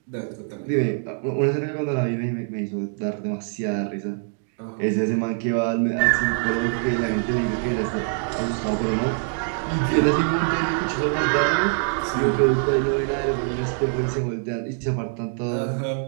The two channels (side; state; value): left; silent; 55 dB below the other